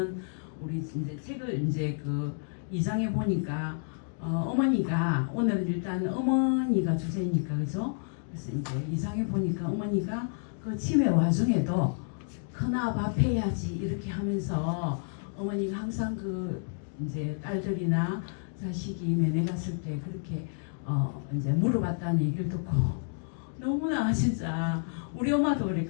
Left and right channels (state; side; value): silent; right; digital silence